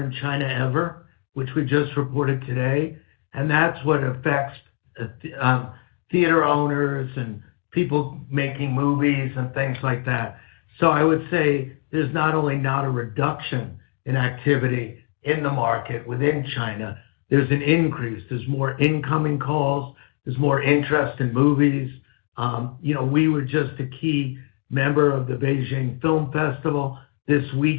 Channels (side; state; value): right; quieter; 35.9 dB